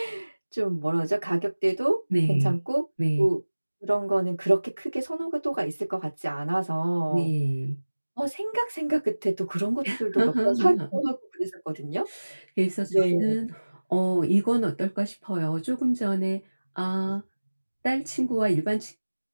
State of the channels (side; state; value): both; inverted; correlation -1.00